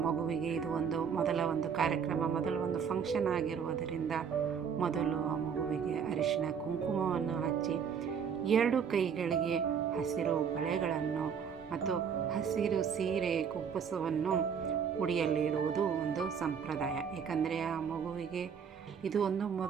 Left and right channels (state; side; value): quieter; left; 7.1 dB